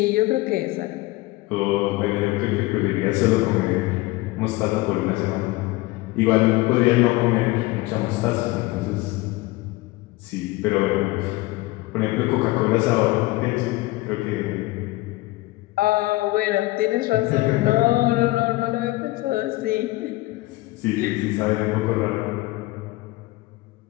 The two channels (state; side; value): quieter; right; 19.9 dB